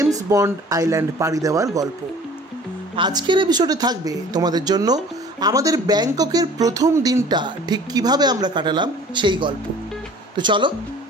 বন্ড আইল্যান্ড পাড়ি দেওয়ার গল্প। আজকের এপিসোডে থাকবে তোমাদের জন্য আমাদের ব্যাংককের প্রথম দিনটা ঠিক কিভাবে আমরা কাটালাম সেই গল্প। তো চলো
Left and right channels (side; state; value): both; normal; correlation 0.48